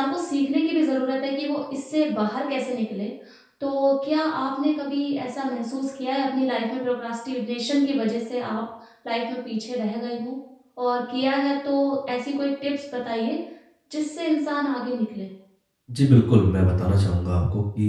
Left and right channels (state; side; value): identical; both; correlation 1.00